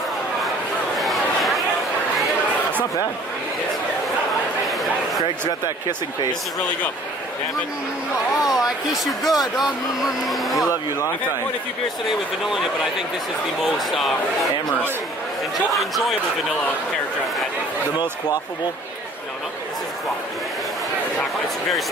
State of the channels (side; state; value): both; normal; correlation 0.53